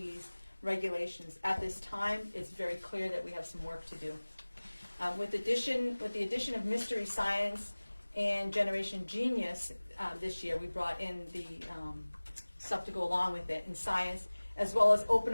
regulations. At this time, it's very clear that we have some work to do. With the addition of Mystery Science and Generation Genius this year, we brought in the stuff to go along with it in science, as well as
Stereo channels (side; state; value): both; inverted; correlation -1.00